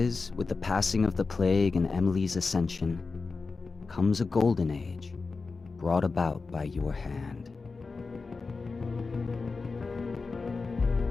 with the passing of the plague and Emily's ascension, comes a golden age, brought about by your hand.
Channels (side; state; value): right; quieter; 4.2 dB